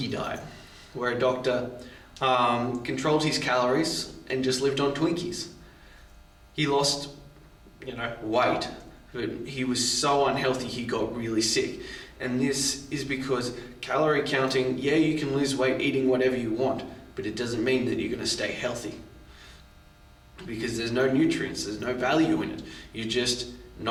diet, where a doctor controlled his calories and just lived on Twinkies. He lost, weight, but he was so unhealthy he got really sick. And this is because calorie counting, yeah, you can lose weight eating whatever you want, but it doesn't mean that you're going to stay healthy. Because there's no nutrients, there's no value in it. You're just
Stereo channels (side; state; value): both; identical; correlation 1.00